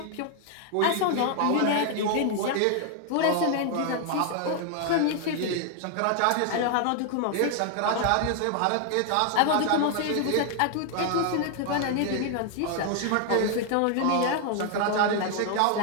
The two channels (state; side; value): different; both; correlation 0.00